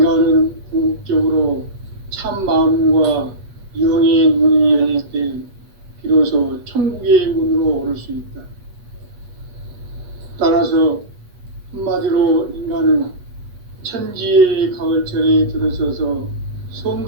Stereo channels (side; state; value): left; late; 8.2 ms